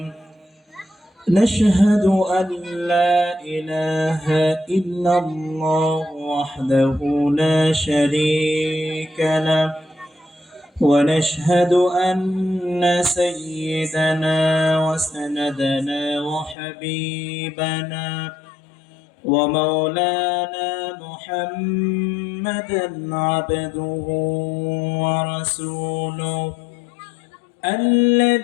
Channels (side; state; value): right; drops out; at 16.6 s